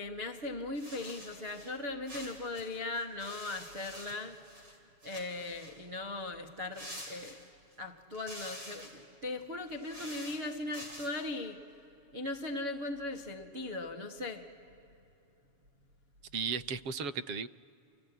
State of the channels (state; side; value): late; left; 7.1 ms